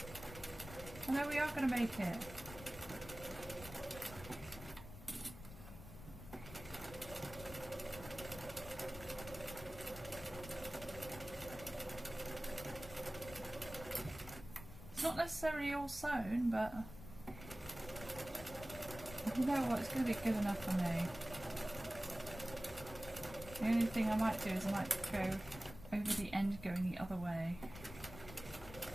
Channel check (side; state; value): left; noise; rumble, 13 dB below the sound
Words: Oh no, we are going to make it. It's not necessarily all sewn, but you know what, it's going to be good enough for me. The only thing I might do is I might go over the end going the other way.